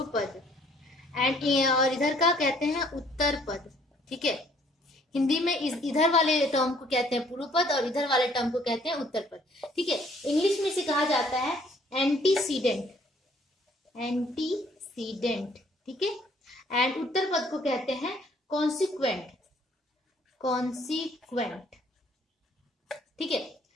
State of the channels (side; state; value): both; normal; correlation 0.61